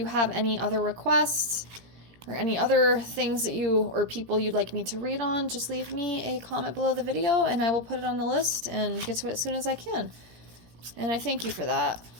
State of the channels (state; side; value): late; left; 17 ms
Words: have any other requests or any other things that you or people you'd like me to read on, just leave me a comment below the video and I will put it on the list and get to it as soon as I can. And I thank you for that.